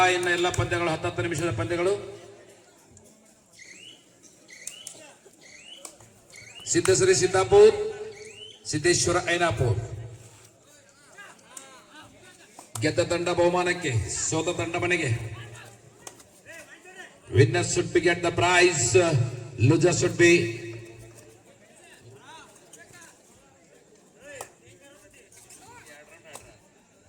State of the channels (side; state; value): both; identical; correlation 1.00